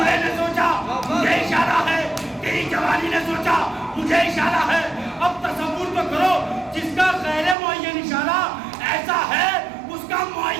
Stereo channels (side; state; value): left; drops out; at 7.6 s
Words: نے سوچا مجھے اشارہ ہے, تیری جوانی نے سوچا مجھے اشارہ ہے. اب تصور تو کرو, جس کا غیر معین اشارہ ایسا ہے اس کا